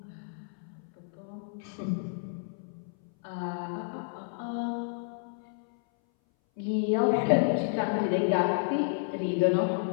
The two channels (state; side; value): silent; right; 57 dB below the other